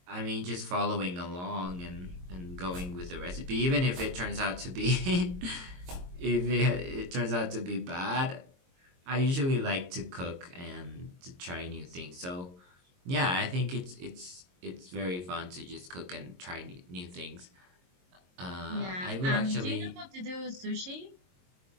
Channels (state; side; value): late; left; 22 ms